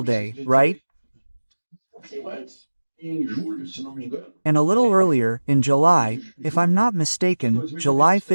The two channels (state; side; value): inverted; both; correlation -1.00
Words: day, right? Um pouquinho antes, em julho, se não me engano, And a little earlier, in July, if I'm not mistaken, July